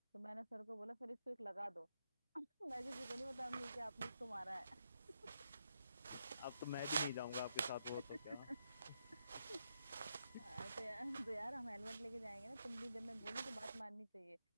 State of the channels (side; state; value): both; inverted; correlation -0.82